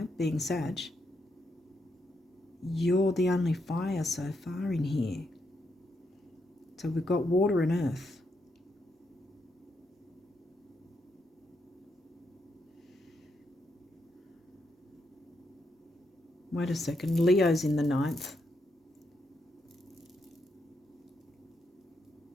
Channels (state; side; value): normal; both; correlation 0.80